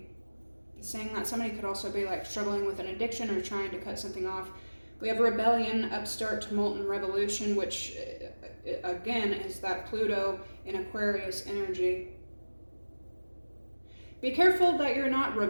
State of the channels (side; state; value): both; inverted; correlation -1.00